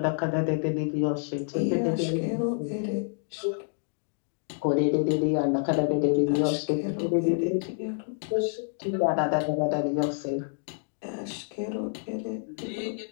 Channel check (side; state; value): right; silent; digital silence